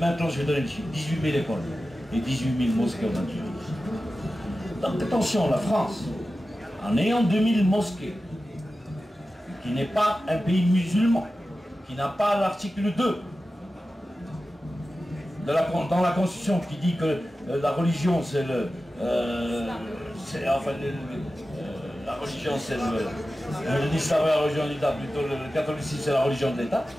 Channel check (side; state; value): both; normal; correlation 0.94